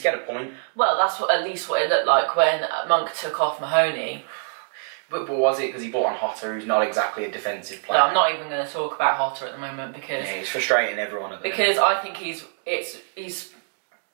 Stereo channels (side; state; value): left; silent; digital silence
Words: get a point. Well, that's at least what it looked like when Monk took off Mahoney. But was it because he brought on Hotter, who's not exactly a defensive player? No, I'm not even going to talk about Hotter at the moment, because it's frustrating everyone at the moment. Because I think he's